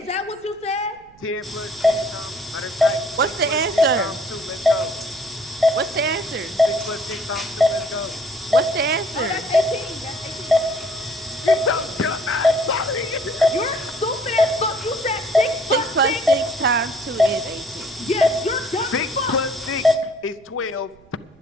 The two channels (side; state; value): right; noise; rumble, 28 dB below the sound